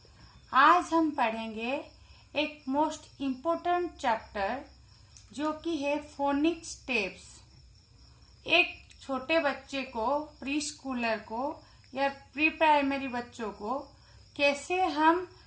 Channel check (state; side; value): identical; both; correlation 1.00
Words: आज हम पढ़ेंगे एक मोस्ट इम्पोर्टेंट चैप्टर जो कि है फोनिक स्टेप्स। एक छोटे बच्चे को, प्री स्कूलर को या प्री प्राइमरी बच्चों को कैसे हम